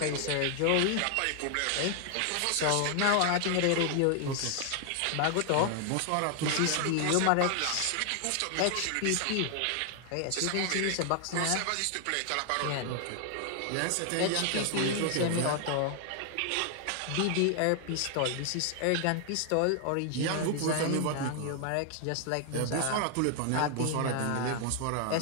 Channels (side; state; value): both; different; correlation 0.00